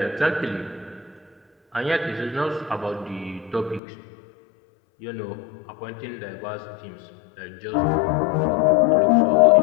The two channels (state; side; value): drops out; right; at 3.8 s